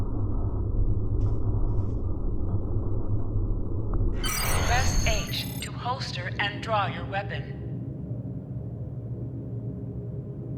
Press H to holster and draw your weapon.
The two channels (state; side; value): identical; both; correlation 1.00